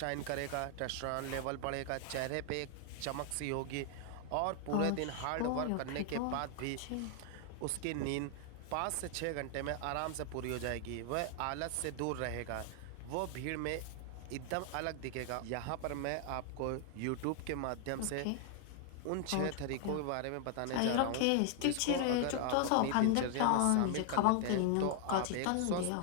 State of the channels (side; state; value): both; different; correlation 0.00